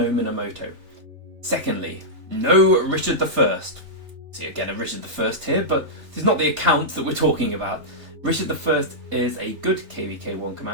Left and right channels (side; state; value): left; late; 3.4 ms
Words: Minamoto. Secondly, no Richard I. See again a Richard I here, but this is not the account that we're talking about. Richard I is a good KVK1